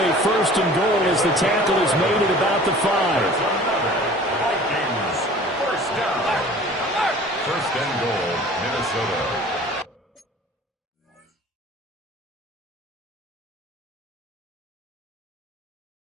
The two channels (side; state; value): both; normal; correlation 0.46